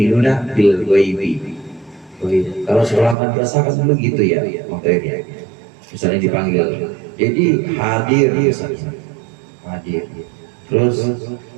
bil ghaibi. Kalau sekolah madrasah kan dulu gitu ya, materinya. Misalnya dipanggil, jadi hadir misalnya, hadir. Terus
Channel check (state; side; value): drops out; left; at 3.2 s